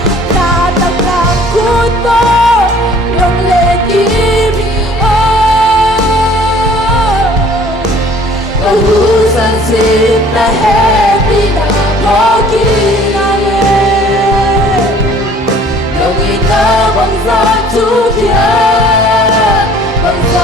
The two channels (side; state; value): both; normal; correlation 0.53